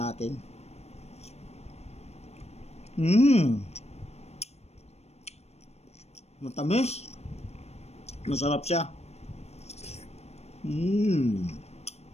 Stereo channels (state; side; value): late; right; 0.31 ms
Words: Matamis. Masarap siya.